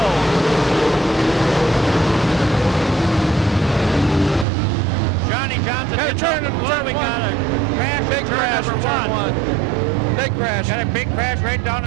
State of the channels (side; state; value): left; drops out; at 4.5 s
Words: Johnny Johnson. Got a turn, we got a crash. Big crash in turn one. Big crash. Got a big crash right down